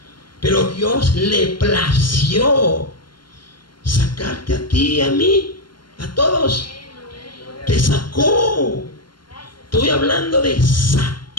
Pero Dios le plació sacarte a ti y a mí, a todos. Te sacó. Estoy hablando de sacar.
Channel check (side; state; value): right; late; 0.72 ms